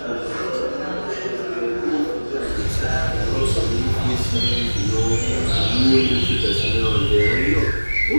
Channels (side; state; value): both; inverted; correlation -1.00